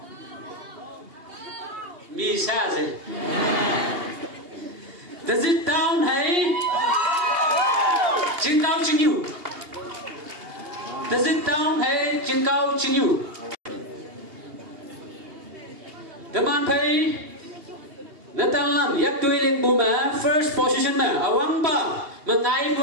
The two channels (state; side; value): late; left; 2.8 ms